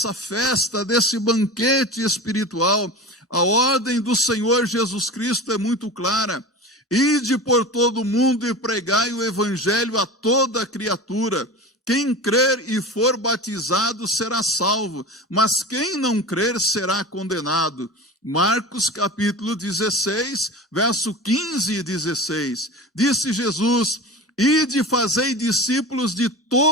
festa, desse banquete espiritual. A ordem do Senhor Jesus Cristo é muito clara. Ide por todo o mundo e pregai o evangelho a toda criatura. Quem crer e for batizado será salvo, mas quem não crer será condenado. Marcos capítulo 16, verso 15 e 16. Disse Jesus: ide fazei discípulos de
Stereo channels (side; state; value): both; normal; correlation 0.31